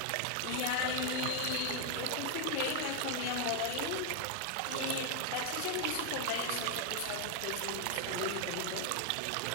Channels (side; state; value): both; different; correlation 0.00